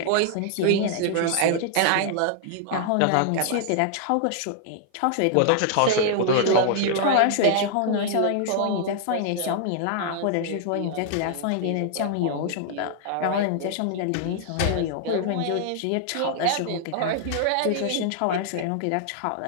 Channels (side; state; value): both; different; correlation 0.00